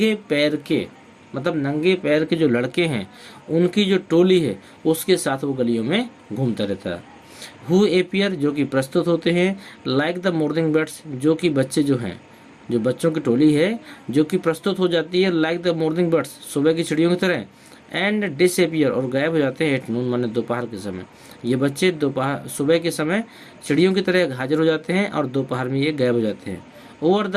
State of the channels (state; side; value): identical; both; correlation 1.00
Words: पैर के, मतलब नंगे पैर के जो लड़के हैं उनकी जो टोली है उसके साथ वो गलियों में घूमता रहता है। हु एपियर, जो कि प्रस्तुत होते हैं, लाइक द मॉर्निंग बर्ड्स, जो कि बच्चे जो हैं, जो बच्चों की टोली है जो कि प्रस्तुत हो जाती है लाइक द मॉर्निंग बर्ड्स, सुबह की चिड़ियों की तरह, एंड डिसएपियर, और गायब हो जाते हैं एट नून माने दोपहर के समय। ये बच्चे दोपहर, सुबह के समय चिड़ियों की तरह हाजिर हो जाते हैं और दोपहर में ये गायब हो जाते हैं। ओवर